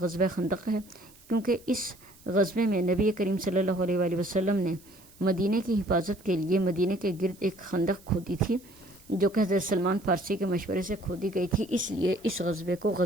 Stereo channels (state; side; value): noise; right; hiss, 25 dB below the sound